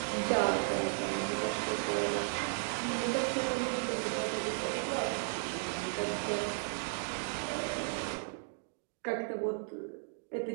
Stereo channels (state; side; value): silent; left; digital silence